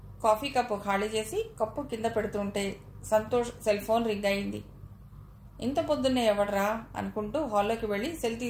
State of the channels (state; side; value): identical; both; correlation 1.00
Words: కాఫీ కప్పు ఖాళీ చేసి కప్పు కింద పెడుతుంటే సంతోష్ సెల్ ఫోన్ రింగ్ అయింది. ఇంత పొద్దున్నే ఎవడరా అనుకుంటూ హాల్లోకి వెళ్ళి సెల్